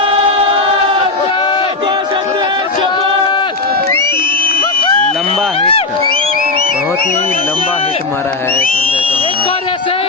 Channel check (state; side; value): quieter; right; 3.6 dB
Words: लंबा हिट, बहुत ही लंबा हिट मारा है संजय चौहान।